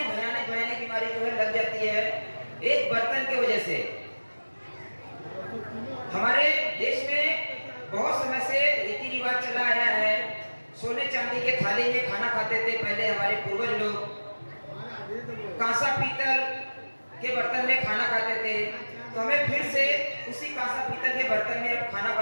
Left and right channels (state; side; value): inverted; both; correlation -1.00